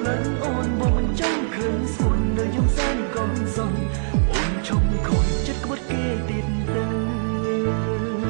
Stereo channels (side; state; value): left; silent; digital silence